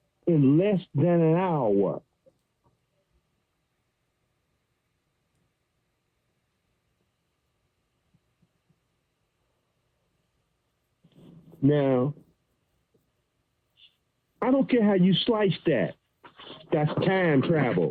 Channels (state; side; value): identical; both; correlation 1.00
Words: in less than an hour. Now, I don't care how you slice that. That's time